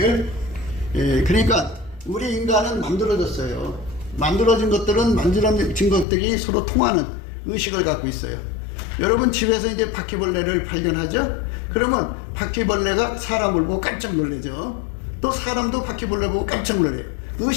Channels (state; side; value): drops out; right; at 6.1 s